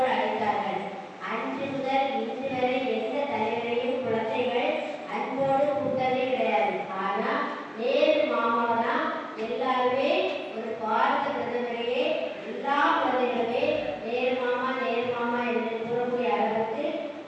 அழைத்தார்கள். அன்று முதல் இன்று வரை எந்த தலைவரையும் குழந்தைகள் அன்போடு கூட்டதே கிடையாது. ஆனால் நேரு மாமாவை தான் எல்லாருமே ஒரு பாரத பிரதமரையே எல்லா குழந்தைகளுமே நேரு மாமா என்று கூறக்கூடிய அளவுக்கு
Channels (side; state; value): both; identical; correlation 1.00